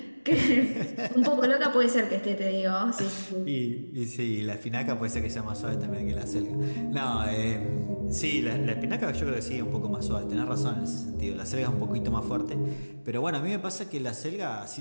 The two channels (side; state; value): both; inverted; correlation -1.00